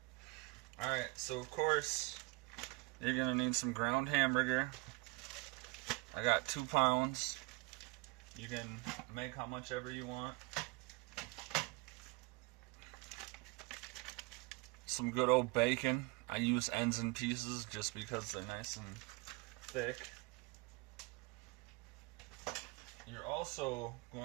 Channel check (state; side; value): quieter; left; 25.8 dB